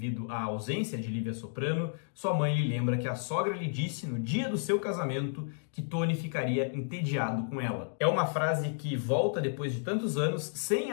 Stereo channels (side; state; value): right; silent; digital silence